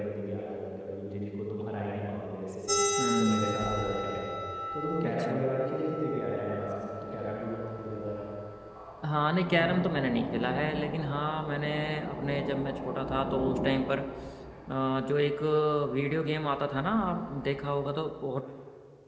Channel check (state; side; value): identical; both; correlation 1.00